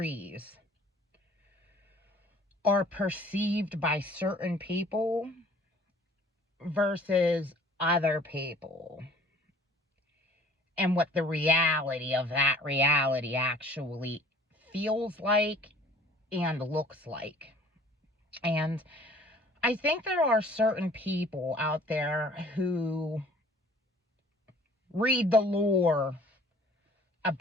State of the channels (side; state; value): both; normal; correlation 0.52